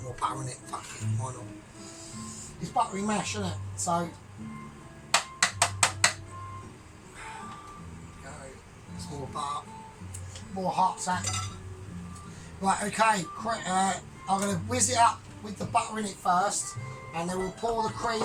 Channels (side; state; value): both; identical; correlation 1.00